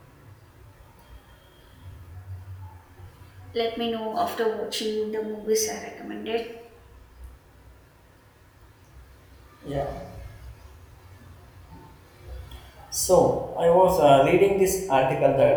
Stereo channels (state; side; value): identical; both; correlation 1.00